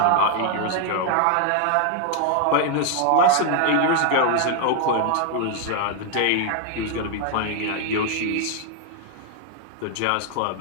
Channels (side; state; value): both; different; correlation 0.00